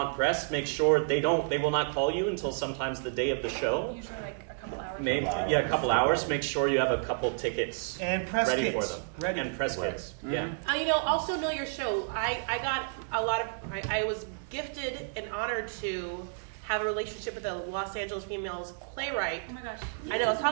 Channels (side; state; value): left; silent; digital silence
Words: press, make sure they will not call you until sometimes the day of the show. Usually like a couple hours. A couple hours. Make sure you have a couple tickets And press ready kits. for them. Ready. And press kits. Yeah. Also know your show. I got a lot of. I was gifted and honored to have a relationship with a Los Angeles females playwright. Oh my gosh. I know. Let's